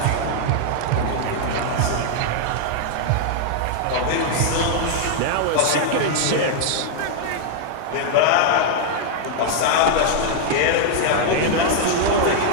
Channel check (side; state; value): both; different; correlation -0.01